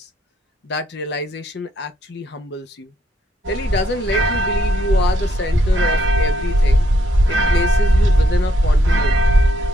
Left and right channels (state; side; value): normal; both; correlation 0.73